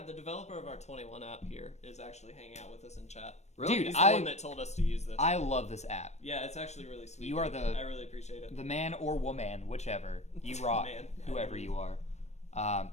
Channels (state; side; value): late; right; 0.32 ms